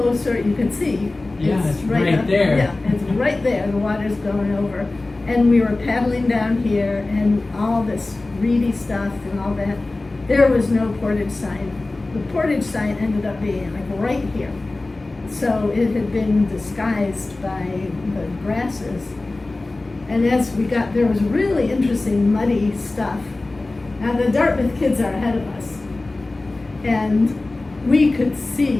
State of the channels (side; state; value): right; quieter; 3.1 dB